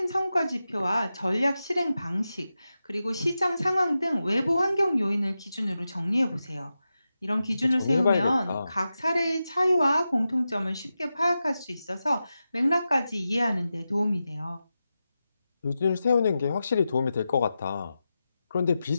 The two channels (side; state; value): both; inverted; correlation -0.91